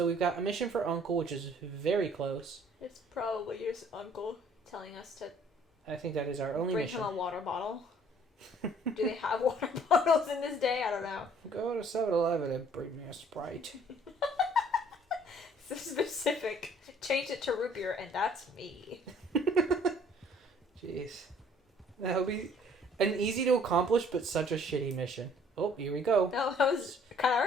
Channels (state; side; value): normal; both; correlation 0.57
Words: we've got a mission for Uncle, which is very close. It's probably your uncle telling us to I think that is our only bring mission. him a water bottle. Do they have water bottles in this day? I don't know. Go to 7-Eleven and bring me a Sprite. So specific. Change it to root beer, and that's me. Jeez. That would be an easy to accomplish, but such a shitty mission. Oh, here we go. No, that was kind